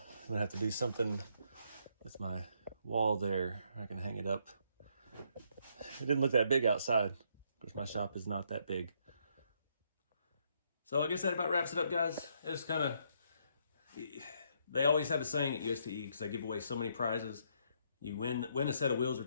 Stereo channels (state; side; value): inverted; both; correlation -0.72